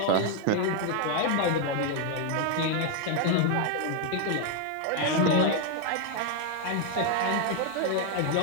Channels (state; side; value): different; both; correlation 0.01